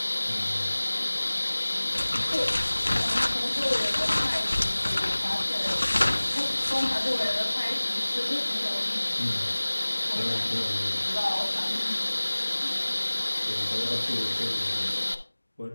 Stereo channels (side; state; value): both; inverted; correlation -1.00